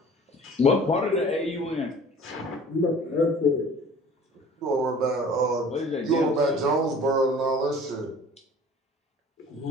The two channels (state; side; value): normal; both; correlation 0.47